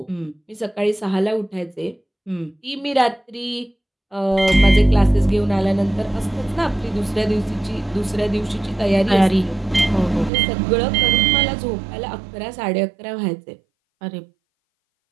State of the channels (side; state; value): left; drops out; at 10.3 s